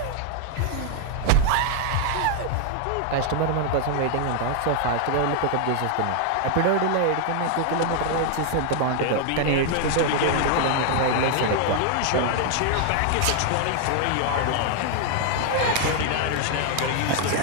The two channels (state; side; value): different; both; correlation 0.00